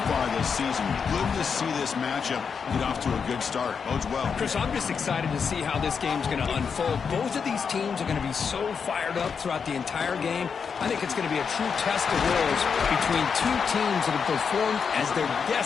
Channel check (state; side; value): quieter; right; 6.2 dB